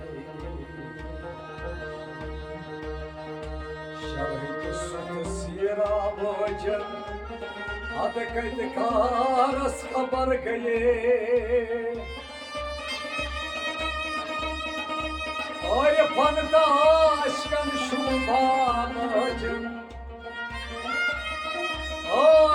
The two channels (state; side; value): identical; both; correlation 1.00